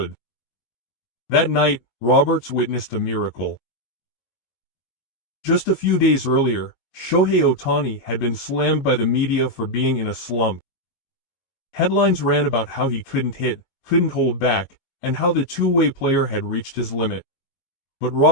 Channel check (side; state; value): right; late; 19 ms